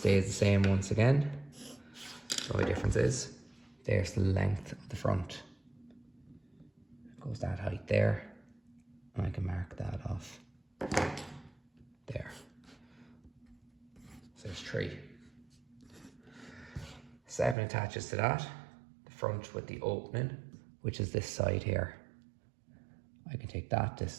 the same once again. The only difference is there's the length of the front. Goes that height there, and I can mark that off there. So there's 3. 7 attaches to that, the front with the opening, which is this side here. I can take that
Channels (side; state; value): left; drops out; at 17.6 s